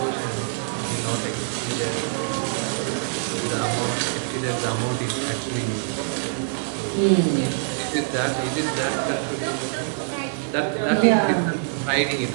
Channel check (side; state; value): left; silent; 62 dB below the other